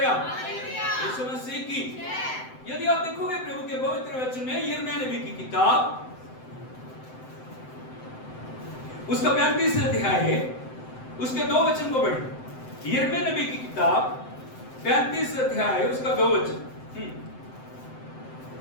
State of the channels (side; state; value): right; late; 7.8 ms